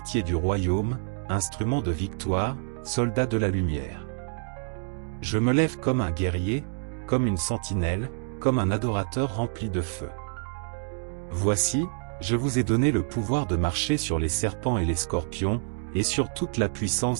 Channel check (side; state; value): left; silent; digital silence